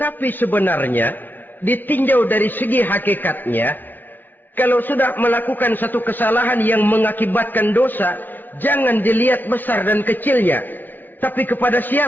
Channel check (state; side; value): late; right; 0.089 ms